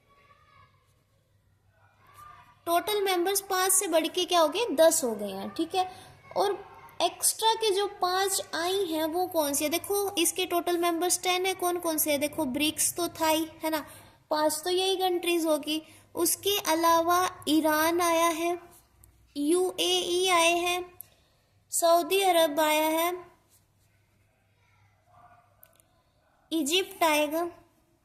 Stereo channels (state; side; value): identical; both; correlation 1.00